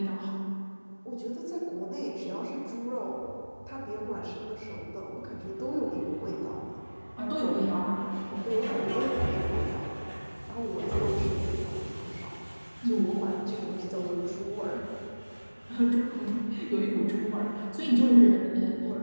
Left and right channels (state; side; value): inverted; both; correlation -1.00